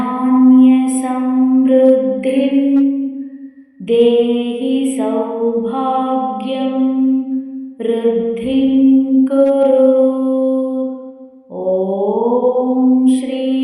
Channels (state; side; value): identical; both; correlation 1.00